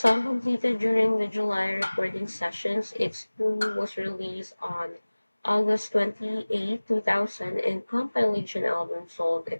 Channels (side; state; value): both; inverted; correlation -1.00